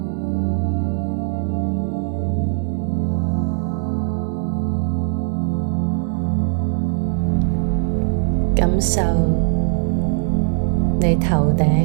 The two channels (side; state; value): left; silent; 66 dB below the other